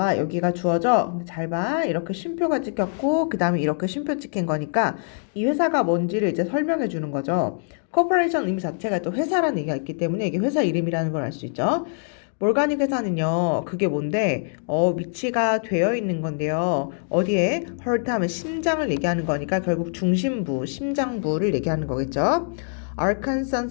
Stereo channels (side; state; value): right; silent; digital silence